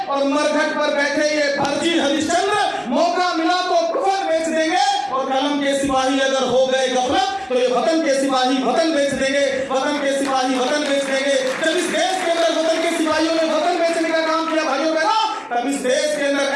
और मरघट पर बैठे ये फर्जी हरिश्चंद्र मौका मिला तो कुफर बेच देंगे और कलम के सिपाही अगर हो गए गफलत तो ये वतन के सिपाही वतन बेच देंगे, वतन के सिपाही वतन बेच देंगे। जब इस देश के अंदर वतन के सिपाहियों ने वतन बेचने का काम किया भाइयों बहनों, तब इस देश के अंदर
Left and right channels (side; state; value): both; identical; correlation 1.00